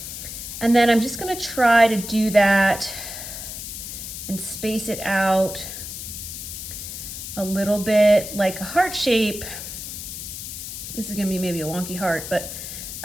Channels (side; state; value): left; noise; hiss, 8 dB below the sound